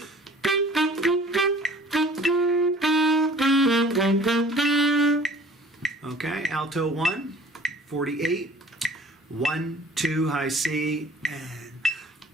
okay, Alto 1, 48, 1, 2, high C, and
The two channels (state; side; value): normal; both; correlation 0.50